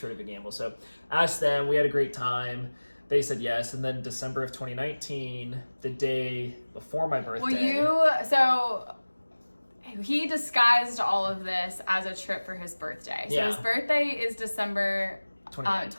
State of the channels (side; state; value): both; inverted; correlation -1.00